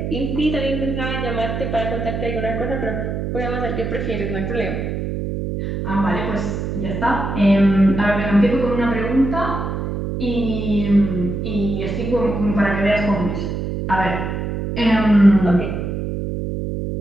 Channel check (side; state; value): right; noise; hum, 3 dB below the sound